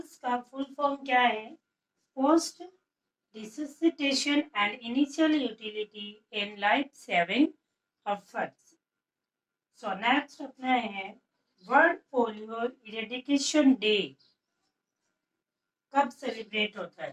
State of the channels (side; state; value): both; identical; correlation 1.00